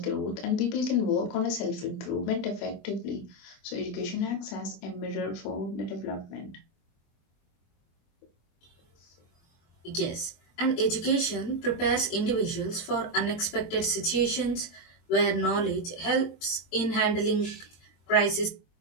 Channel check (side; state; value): right; late; 23 ms